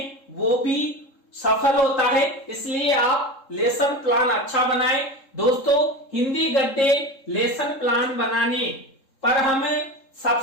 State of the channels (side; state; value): right; late; 3.7 ms